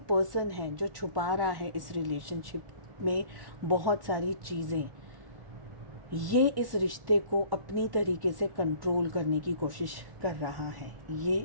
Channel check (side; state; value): left; late; 1.1 ms